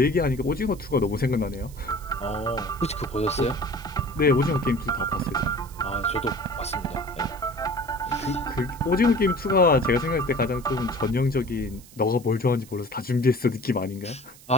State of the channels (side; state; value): right; noise; hiss, 22 dB below the sound